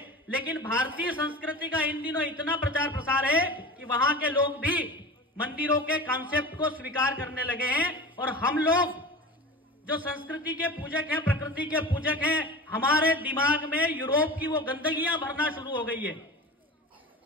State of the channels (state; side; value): normal; both; correlation 0.33